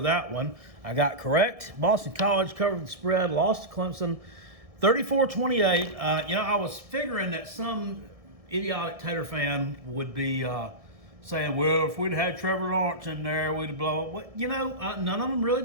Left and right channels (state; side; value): late; left; 1.7 ms